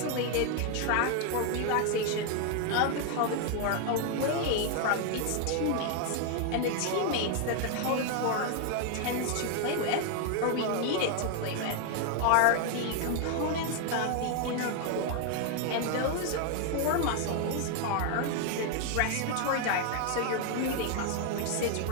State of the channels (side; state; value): both; different; correlation 0.01